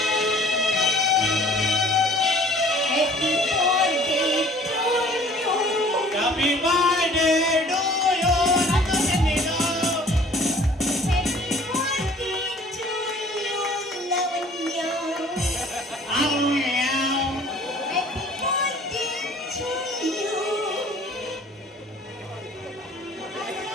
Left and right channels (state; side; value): normal; both; correlation 0.52